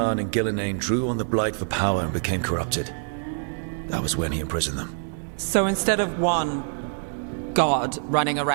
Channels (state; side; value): silent; left; digital silence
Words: and Gillenane drew on the Blight for power and became corrupted. That was when he imprisoned them. So instead of one god running